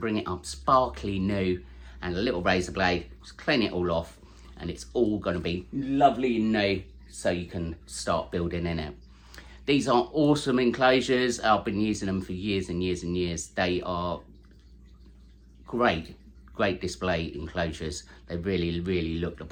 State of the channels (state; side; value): identical; both; correlation 1.00